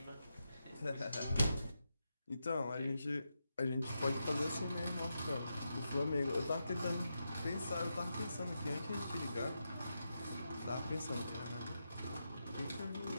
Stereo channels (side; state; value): both; inverted; correlation -0.87